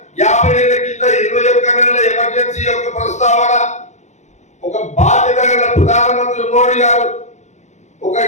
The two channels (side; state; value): right; late; 0.34 ms